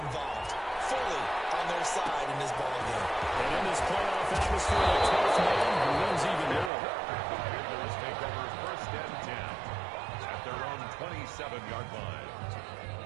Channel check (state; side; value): drops out; left; at 6.7 s